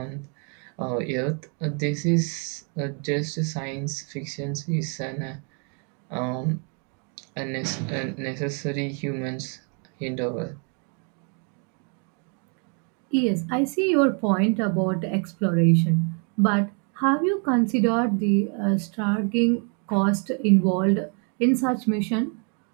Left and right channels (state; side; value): quieter; left; 39.7 dB